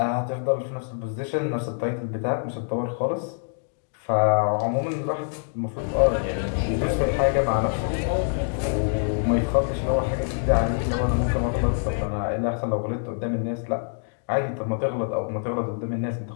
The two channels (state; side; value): silent; right; digital silence